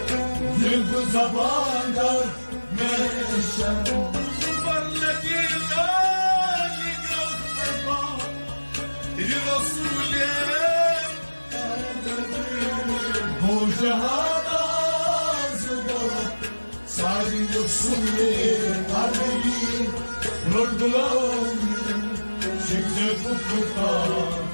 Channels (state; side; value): inverted; both; correlation -1.00